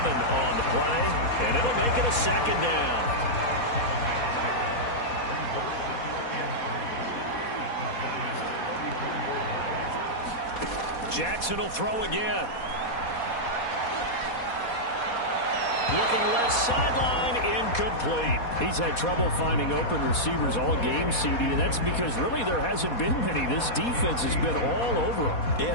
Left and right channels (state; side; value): late; right; 4.2 ms